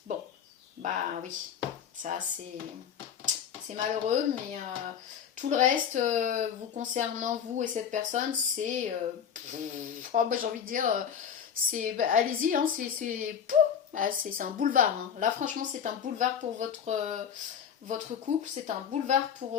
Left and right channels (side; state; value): right; quieter; 8.0 dB